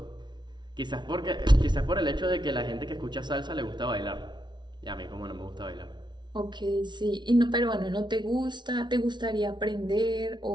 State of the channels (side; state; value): left; late; 0.21 ms